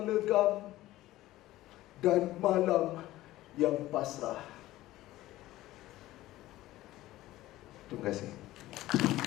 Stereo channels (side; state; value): right; quieter; 16.2 dB